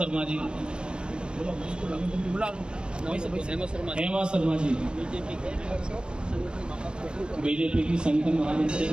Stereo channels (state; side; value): late; left; 0.051 ms